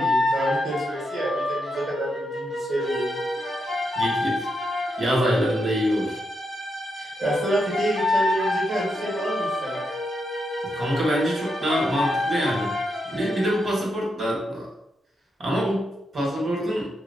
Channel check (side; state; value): both; normal; correlation 0.83